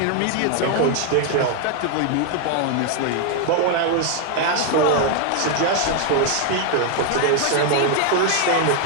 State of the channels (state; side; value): different; both; correlation 0.01